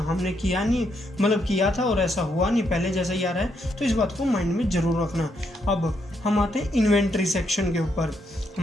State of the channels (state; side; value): normal; both; correlation 0.77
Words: किया नहीं, मतलब किया था और ऐसा हुआ नहीं, पहले जैसा ही आ रहा है। तो इस बात को माइंड में ज़रूर रखना। अब हम आते हैं इन्वेंट्री सेक्शन के ऊपर।